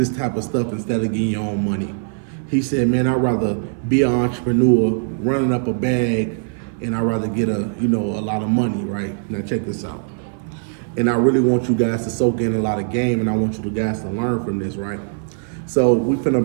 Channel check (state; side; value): silent; left; 57 dB below the other